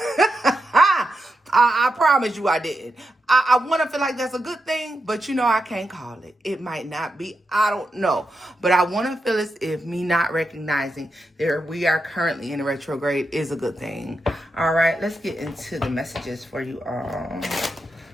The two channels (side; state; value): both; normal; correlation 0.87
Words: I promise you I didn't. I want to feel like that's a good thing, but you know I can't call it. It might not be. I don't know. But I want to feel as if me not recognizing that we are currently in a retrograde is a good thing. All right, let's get into the messages for you all.